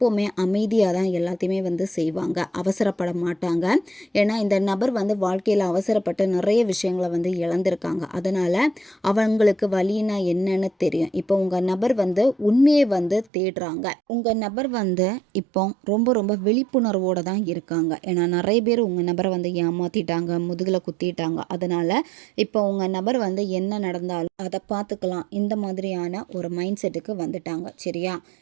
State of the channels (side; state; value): left; drops out; at 13.2 s